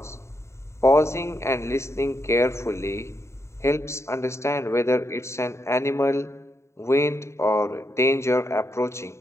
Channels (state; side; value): late; right; 0.13 ms